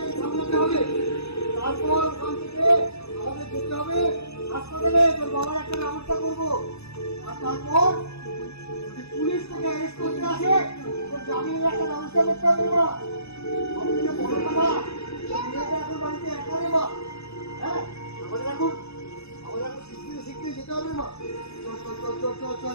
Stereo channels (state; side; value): late; right; 0.79 ms